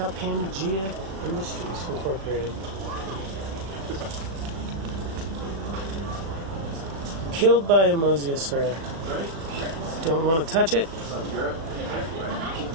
Pangea Industries Incorporated. Killed by a mosasaur. Don't want to touch it,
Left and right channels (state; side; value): late; left; 37 ms